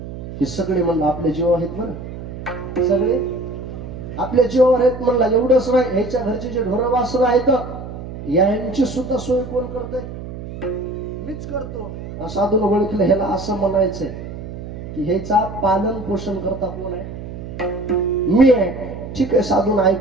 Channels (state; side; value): noise; right; hum, 10 dB below the sound